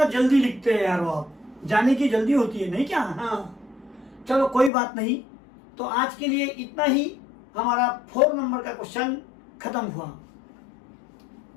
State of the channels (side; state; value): right; drops out; at 4.7 s